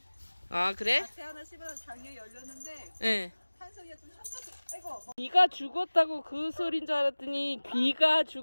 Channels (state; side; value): inverted; both; correlation -1.00